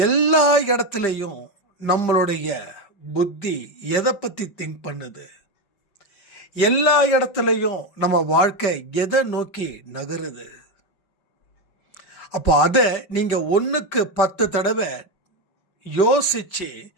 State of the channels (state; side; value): late; right; 5.1 ms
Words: எல்லா இடத்துலையும் நம்மளுடைய புத்தி எதை பற்றி திங்க் பண்ணுது, எல்லா இடத்துலையும் நம்ம வாழ்க்கை எதை நோக்கி நகருது. அப்போ அதை நீங்கள் 1க்கு 10 தடவை யோசிச்சு